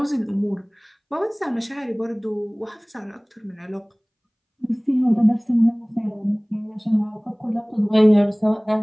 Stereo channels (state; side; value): identical; both; correlation 1.00